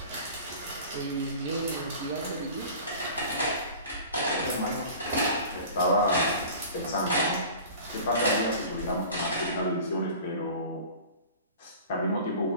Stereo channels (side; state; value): both; inverted; correlation -0.41